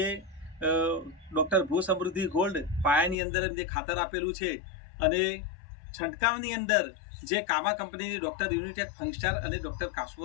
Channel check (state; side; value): drops out; right; at 3.2 s